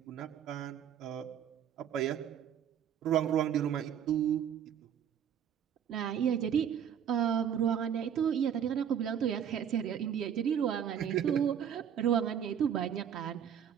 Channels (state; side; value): quieter; left; 8.7 dB